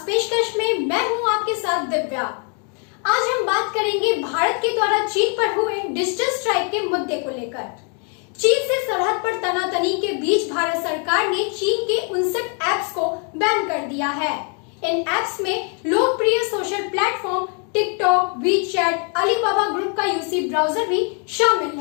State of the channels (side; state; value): right; quieter; 39.2 dB